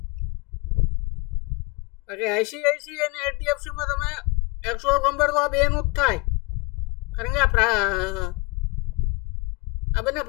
બાકી ICICI અને HDFCમાં તમે એકચ્યુઅલ કમ્પેર તો આ બેનું જ થાય. કારણ કે આ બંને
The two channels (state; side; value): quieter; right; 28.1 dB